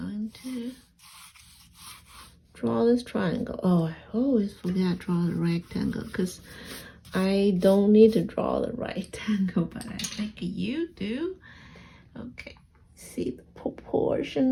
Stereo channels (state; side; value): identical; both; correlation 1.00